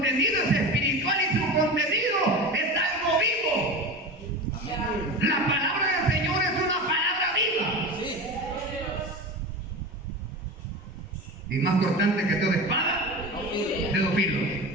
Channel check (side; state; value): both; normal; correlation 0.27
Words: es espiritual y su contenido es algo vivo. La palabra del Señor es una palabra viva. Y más cortante que toda espada de dos filos.